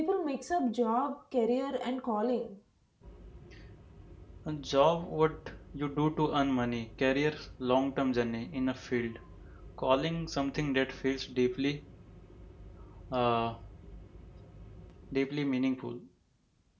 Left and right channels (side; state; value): both; identical; correlation 1.00